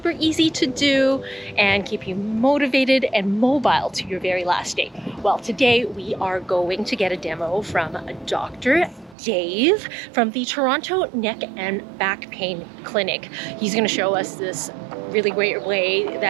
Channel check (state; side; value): drops out; left; at 9.2 s